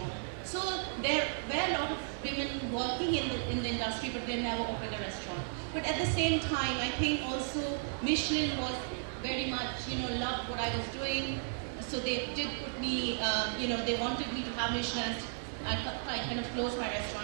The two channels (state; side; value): silent; left; digital silence